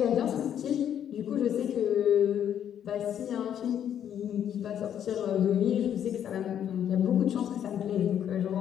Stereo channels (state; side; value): quieter; right; 9.6 dB